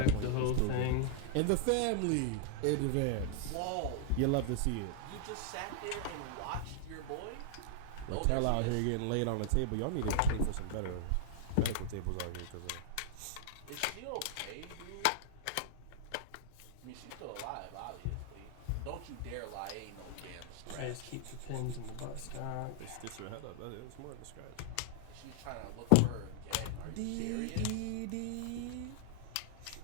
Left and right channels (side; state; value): both; different; correlation -0.01